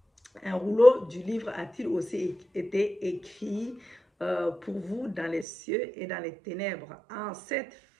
Un rouleau du livre a-t-il aussi été écrit pour vous dans les cieux et dans les ténèbres? En cette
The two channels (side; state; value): left; drops out; at 5.5 s